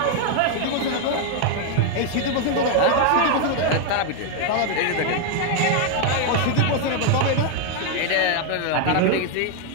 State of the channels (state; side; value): different; both; correlation 0.00